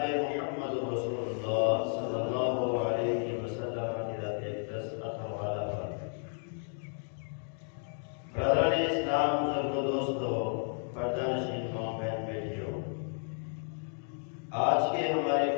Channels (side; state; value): right; silent; 55 dB below the other